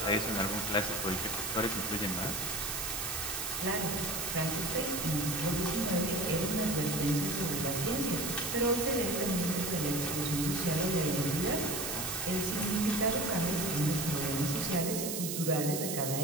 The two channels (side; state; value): right; noise; hiss, 3 dB below the sound